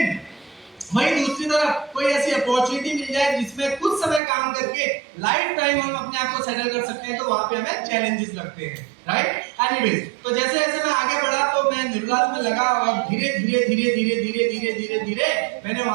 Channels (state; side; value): drops out; left; at 4.2 s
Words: वहीं दूसरी तरफ कोई ऐसी अपॉर्चुनिटी मिल जाए जिसमें कुछ समय काम करके लाइफ टाइम हम अपने आप को सेटल कर सकते हैं, तो वहां पे हमें चैलेंजेस लगते हैं, राइट। एनीवेज, तो जैसे जैसे मैं आगे बढ़ा तो मैं निर्लाज में लगा और धीरे धीरे धीरे धीरे धीरे धीरे धीरे धीरे मैंने